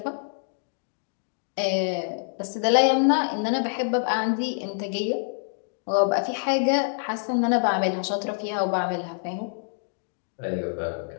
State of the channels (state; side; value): silent; right; digital silence